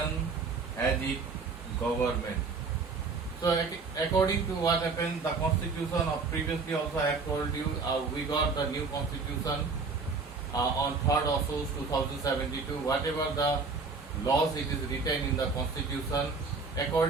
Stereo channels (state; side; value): quieter; left; 4.5 dB